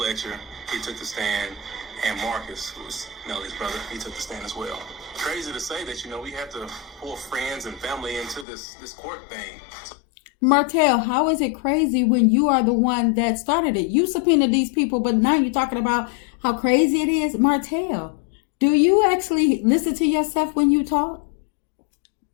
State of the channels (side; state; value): right; drops out; at 8.5 s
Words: he took the stand, and Marcus, who was Melody's brother, he took the stand as well. Crazy to say that, we have to pull friends and family into this court thing. Martell, how is it crazy when you are the one that started it? You subpoenaed these people, but now you're talking about how crazy it is. Martell, do you actually listen to yourself when you talk?